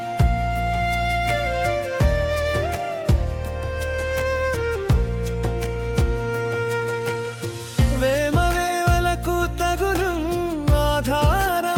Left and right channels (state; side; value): identical; both; correlation 1.00